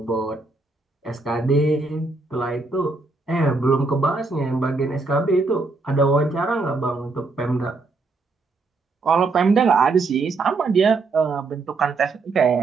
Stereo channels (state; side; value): quieter; left; 3.8 dB